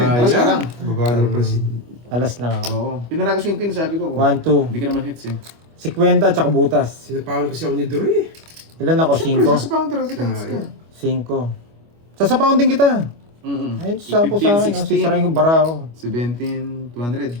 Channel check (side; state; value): left; late; 25 ms